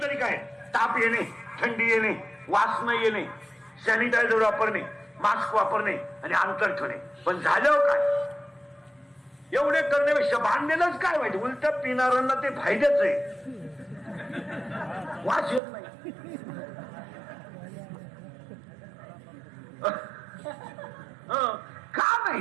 तरी काय, ताप येणे, थंडी येणे, वास न येणे, सॅनिटायझर वापरणे, मास्क वापरणे आणि अंतर ठेवणे. पण झालं काय, एवढे करण्यापेक्षा बांधलेलंच काय वाईट. उलट पिणाऱ्यांना ते फायद्याच आहे, वास येत नाही. का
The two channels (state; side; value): drops out; left; at 15.6 s